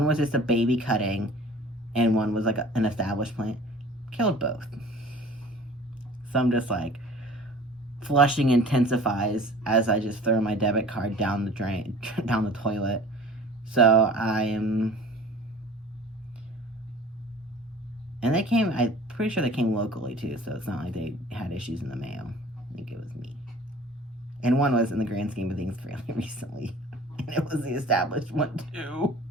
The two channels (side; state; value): both; normal; correlation 0.45